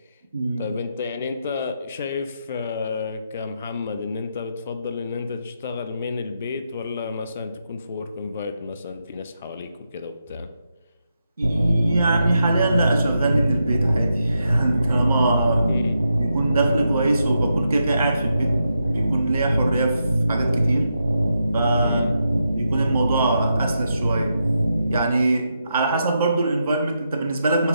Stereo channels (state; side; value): inverted; both; correlation -0.84